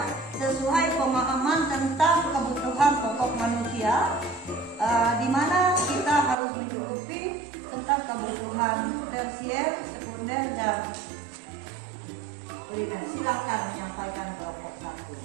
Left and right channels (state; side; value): drops out; left; at 6.4 s